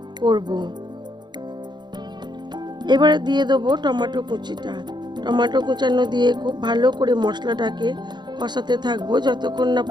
করব। এবারে দিয়ে দেবো টমেটো কুচিটা। টমেটো কুচানো দিয়ে খুব ভালো করে মশলাটাকে কষাতে থাকবো যতক্ষণ না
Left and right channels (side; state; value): left; late; 0.21 ms